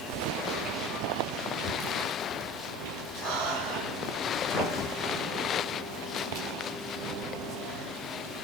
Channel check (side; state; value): both; normal; correlation 0.41